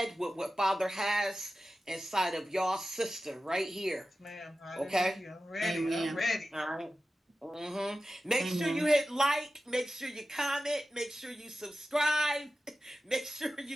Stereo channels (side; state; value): both; normal; correlation 0.94